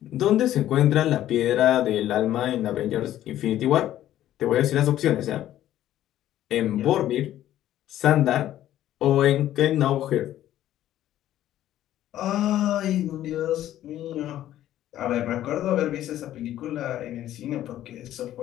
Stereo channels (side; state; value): right; quieter; 12.7 dB